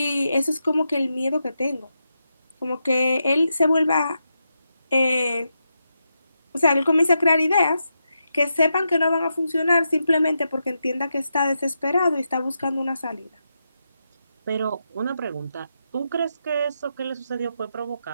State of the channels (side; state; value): both; inverted; correlation -0.85